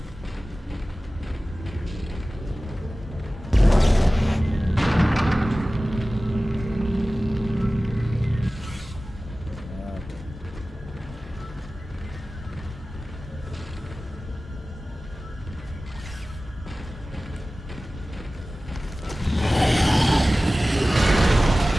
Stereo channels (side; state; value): both; normal; correlation 0.97